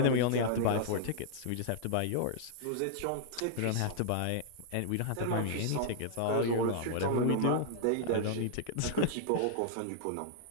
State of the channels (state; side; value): different; both; correlation 0.00